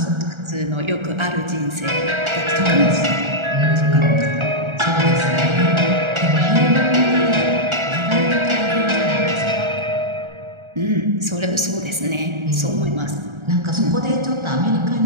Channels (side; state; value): left; late; 1.4 ms